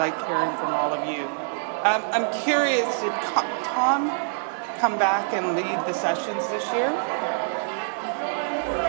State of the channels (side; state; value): left; silent; 62 dB below the other